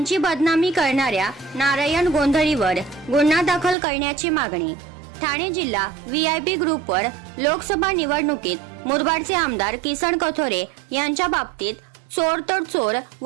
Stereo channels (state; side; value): drops out; left; at 3.8 s